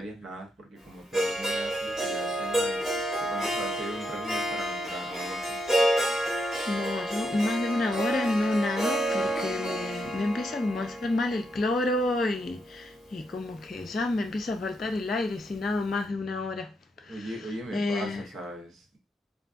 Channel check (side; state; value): both; normal; correlation 0.81